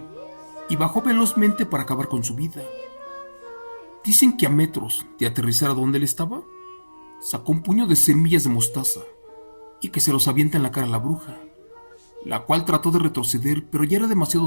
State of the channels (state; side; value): inverted; both; correlation -1.00